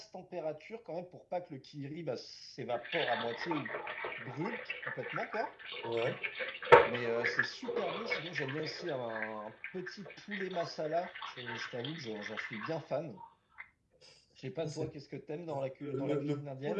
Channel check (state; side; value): identical; both; correlation 1.00